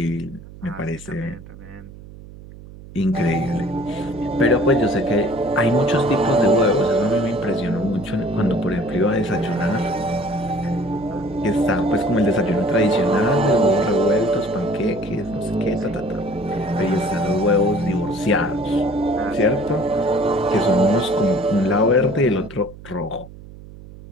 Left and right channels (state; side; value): noise; right; hum, 17 dB below the sound